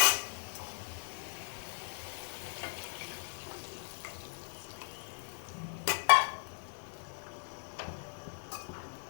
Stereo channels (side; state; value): right; silent; digital silence